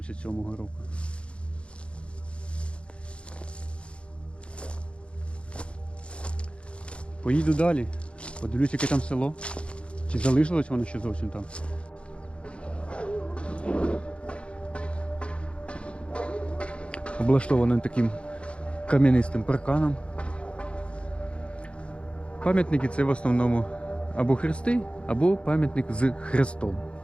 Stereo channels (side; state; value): right; late; 0.058 ms